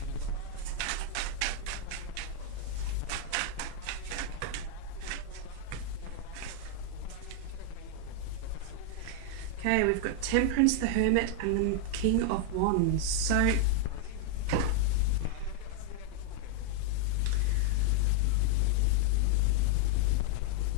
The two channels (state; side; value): different; both; correlation 0.00